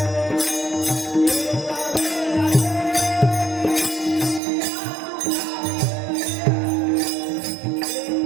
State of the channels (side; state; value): left; drops out; at 4.4 s